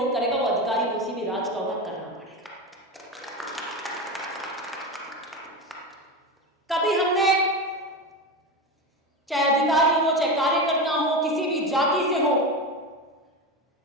करेगा, वो अधिकारी किसी भी राज का होगा, करना पड़ेगा। कभी हमने, चाहे अधिकारी हो चाहे कार्यकर्ता हो, किसी भी जाति से हो,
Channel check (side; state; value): both; normal; correlation 0.20